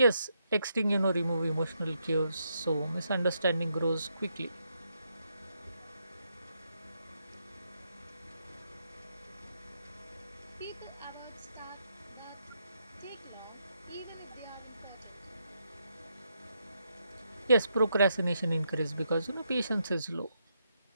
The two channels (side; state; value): both; inverted; correlation -0.79